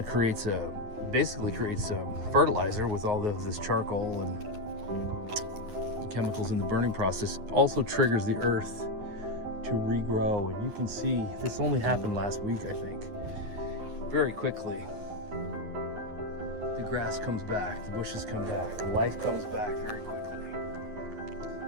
basically creates fertilizer with all this charcoal and chemicals in the burning process. Also triggers the earth to regrow. And you can see this only happened last week, I think. Very quickly, the grass comes back, the bushes come back, life comes back very quickly.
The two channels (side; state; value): left; late; 9.5 ms